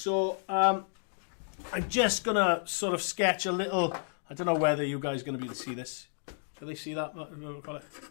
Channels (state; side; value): silent; right; digital silence